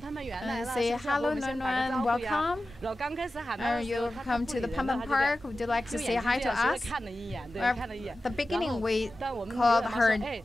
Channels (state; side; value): normal; both; correlation 0.94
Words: And say hello, Nuan Nuan, welcome. You come to the Panda Park. Would you like to say hi to us? At the beginning, we called her